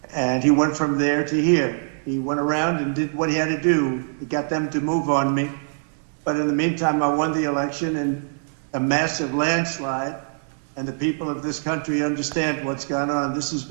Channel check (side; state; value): left; silent; 63 dB below the other